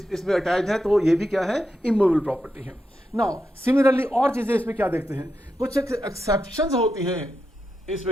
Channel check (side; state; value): both; normal; correlation 0.87